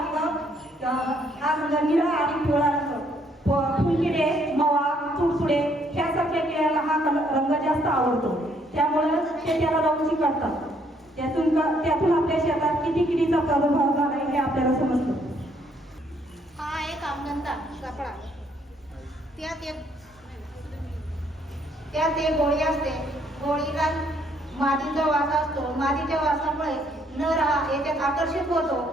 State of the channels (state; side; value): normal; both; correlation 0.68